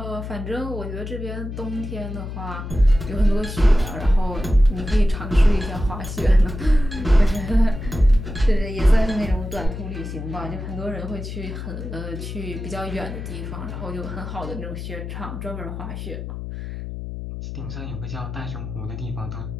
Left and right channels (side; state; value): left; noise; hum, 7 dB below the sound